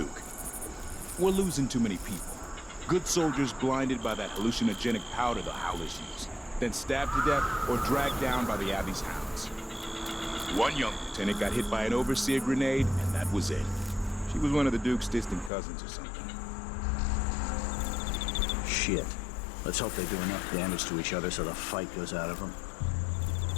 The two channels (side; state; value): right; drops out; at 15.5 s